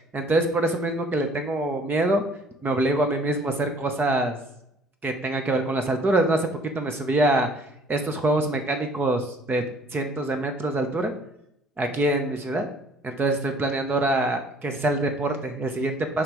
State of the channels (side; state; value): both; normal; correlation 0.56